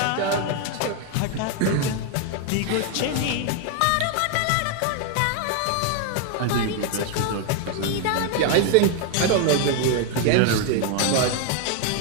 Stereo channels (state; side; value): different; both; correlation 0.01